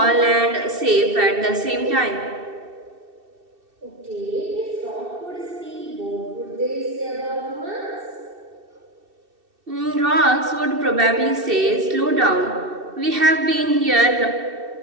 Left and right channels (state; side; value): late; left; 2.7 ms